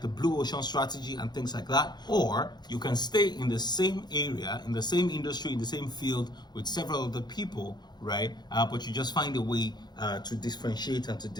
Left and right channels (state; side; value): late; right; 0.21 ms